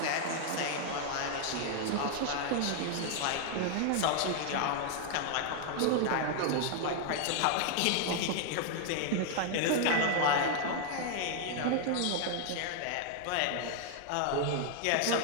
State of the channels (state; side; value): different; both; correlation 0.00